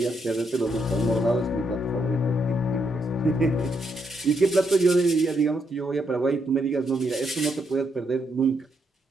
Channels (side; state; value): both; normal; correlation 0.78